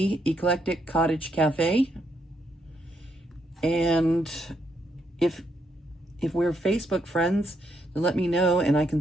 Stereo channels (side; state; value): both; normal; correlation 0.77